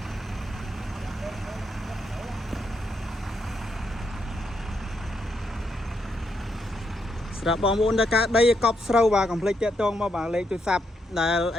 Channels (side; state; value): both; normal; correlation 0.79